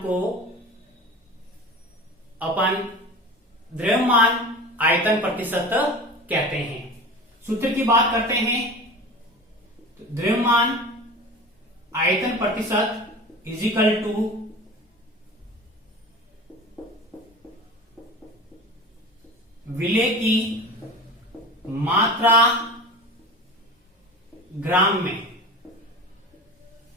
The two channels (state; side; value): normal; both; correlation 0.34